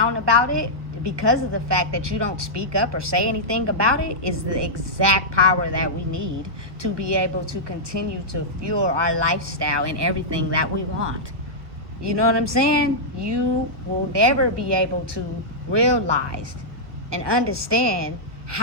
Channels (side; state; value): left; late; 1.4 ms